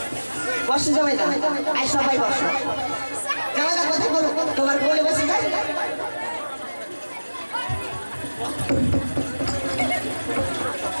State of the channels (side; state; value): both; inverted; correlation -1.00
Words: বসো জামাই দা, আই সবাই বসো। জামাই দা কথা বলো, তোমার কোলে বসে যাই।